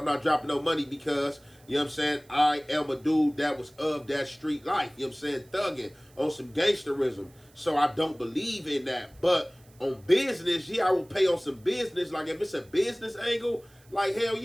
not dropping no money because, you know what I'm saying, I am a dude that was of that street life, you know what I'm saying, thugging on some gangsterism. So I don't believe in that. But on business, yeah, I will pay on some business. Like if it's a business angle, like hell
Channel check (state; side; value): noise; right; hiss, 29 dB below the sound